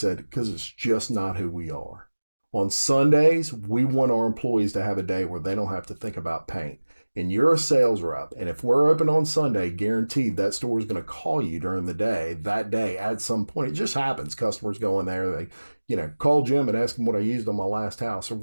because it's just not who we are. On Sundays, we want our employees to have a day where they don't have to think about paint. And you're a sales rep, and if we're open on Sunday, guaranteed that store is going to call you during the day, that day at some point. It just happens. Customers go in there, they, call Jim and ask him what I used on my last house or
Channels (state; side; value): inverted; both; correlation -1.00